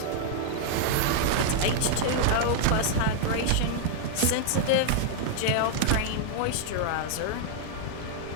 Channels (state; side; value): different; both; correlation -0.01